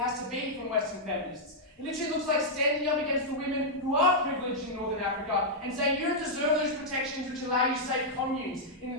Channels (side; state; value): both; normal; correlation -0.06